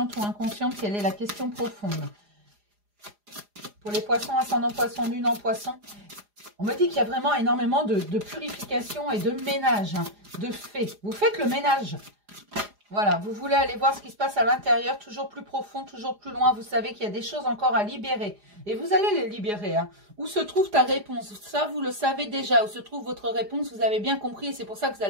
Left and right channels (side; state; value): left; late; 4.9 ms